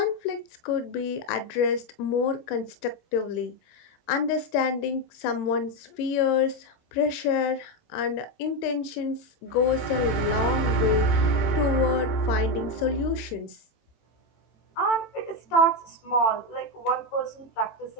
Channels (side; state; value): right; late; 18 ms